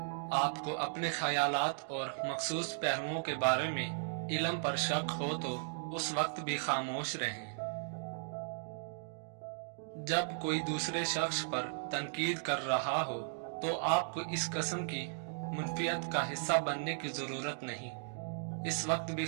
आपको अपने ख्यालात और मखसूस पहलुओं के बारे में इल्म पर शक हो, तो उस वक्त भी खामोश रहें। जब कोई दूसरे शख्स पर तनकीद कर रहा हो, तो आपको इस किस्म की मुनफियत का हिस्सा बनने की जरूरत नहीं, इस वक्त भी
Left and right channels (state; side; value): silent; left; digital silence